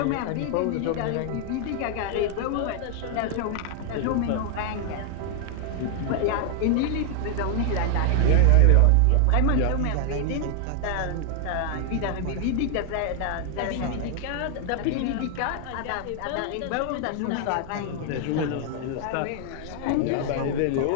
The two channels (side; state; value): both; different; correlation 0.00